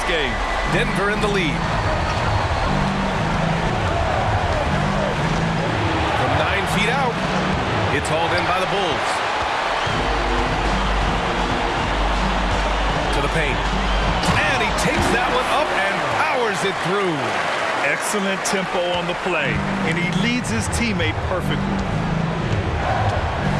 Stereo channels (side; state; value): both; identical; correlation 1.00